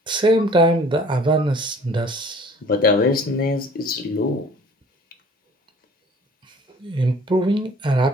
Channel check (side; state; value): both; normal; correlation 0.51